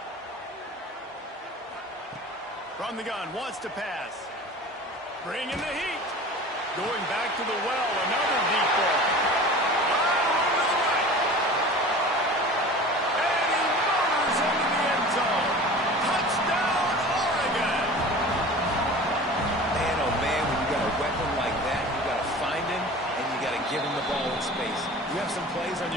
From the gun, wants to pass. Bringing the heat. Going back to the well, another deep ball. And he motors into the end zone. Touchdown, Oregon. Man, oh man, when you got a weapon like that, you got to find him, and you got to give him the ball in space. You have some plays on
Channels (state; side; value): normal; both; correlation 0.39